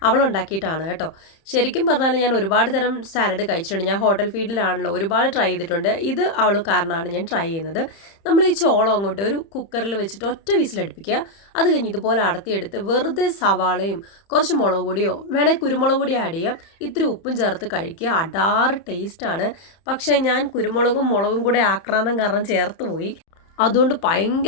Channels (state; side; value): late; right; 30 ms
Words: അവളുണ്ടാക്കിയിട്ടാണ് കേട്ടോ. ശരിക്കും പറഞ്ഞാൽ ഞാൻ ഒരുപാട് തരം സാലഡ് കഴിച്ചിട്ടുണ്ട്. ഞാൻ ഹോട്ടൽ ഫീൽഡിലാണല്ലോ, ഒരുപാട് ട്രൈ ചെയ്തിട്ടുണ്ട്. ഇത് അവൾ കാരണമാണ് ഞാൻ ട്രൈ ചെയ്യുന്നത്. നമ്മൾ ഈ ചോളം അങ്ങോട്ട് ഒരു കുക്കറിൽ വെച്ചിട്ട് ഒറ്റ വിസിലടുപ്പിക്കുക. അത് കഴിഞ്ഞ് ഇതുപോലെ അടത്തിയെടുത്ത് വെറുതെ സവാളയും കുറച്ച് മുളക് പൊടിയോ വേണേൽ കുരുമുളക് പൊടി ആഡ് ചെയ്യാം, ഇത്തിരി ഉപ്പും ചേർത്ത് കഴിക്കുക. അടാറ് ടേസ്റ്റാണ്. പക്ഷേ ഞാൻ കുരുമുളകും മുളകും കൂടെ ആക്രാന്തം കാരണം ചേർത്ത് പോയി. അതുകൊണ്ട്